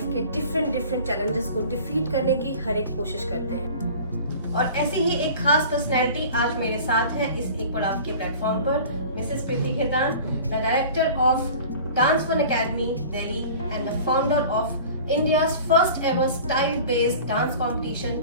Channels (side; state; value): both; inverted; correlation -0.41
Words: के डिफरेंट चैलेंजेस को डिफीट करने की हर एक कोशिश करते हैं। और ऐसी ही एक खास पर्सनैलिटी आज मेरे साथ है इस एक पड़ाव के प्लेटफॉर्म पर, Mrs Preeti Khetan, the director of dance fun academy Delhi and the founder of India's first ever style based dance